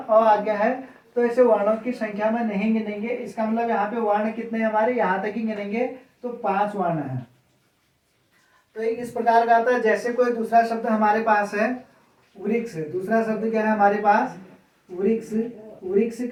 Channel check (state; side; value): identical; both; correlation 1.00